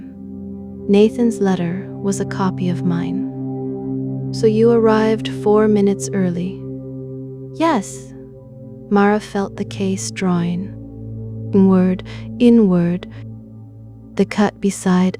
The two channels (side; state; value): both; identical; correlation 1.00